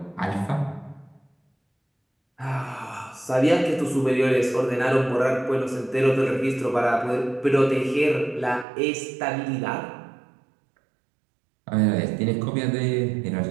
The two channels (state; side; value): drops out; left; at 8.7 s